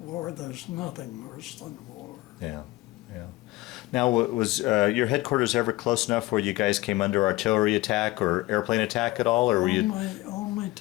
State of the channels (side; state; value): right; quieter; 19.2 dB